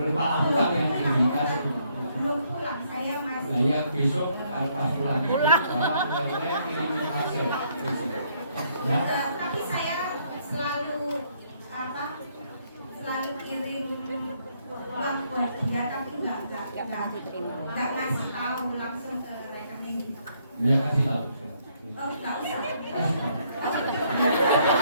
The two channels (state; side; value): inverted; both; correlation -0.70